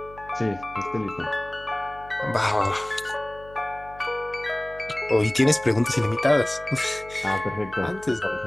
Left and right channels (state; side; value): noise; left; hum, 20 dB below the sound